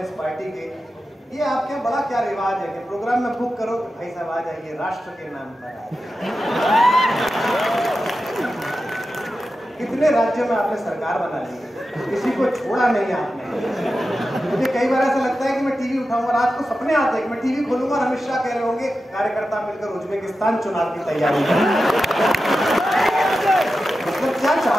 इस पार्टी के, ये आपके बड़ा क्या रिवाज है कि प्रोग्राम में बुक करो कि भाई साहब आ जाइए राष्ट्र के नाम पर कितने राज्यों में आपने सरकार बना ली, किसी को छोड़ा नहीं आपने। मुझे कई बार ऐसा लगता है कि मैं टीवी उठाऊंगा, रात को सपने आते हैं कि मैं टीवी खोलूंगा और अमित शाह कह रहे होंगे कार्यकर्ता मिलकर उज्बेकिस्तान चुनाव की तैयारी मतलब क्या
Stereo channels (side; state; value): both; normal; correlation 0.91